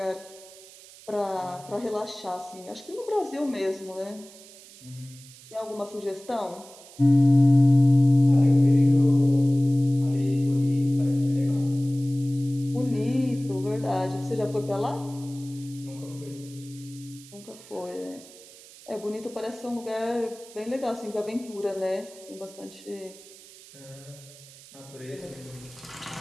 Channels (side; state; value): right; noise; hiss, 20 dB below the sound